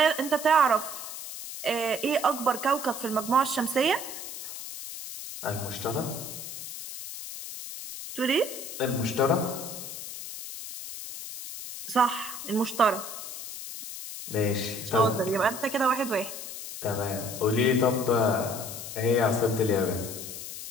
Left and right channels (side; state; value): left; noise; hiss, 9 dB below the sound